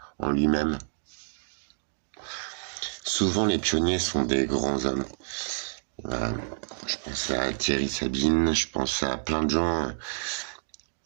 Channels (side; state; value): left; silent; digital silence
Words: en lui-même. Souvent les pionniers sont des grands hommes. Voilà. Je pense à Thierry Sabine, je pense à plein de gens.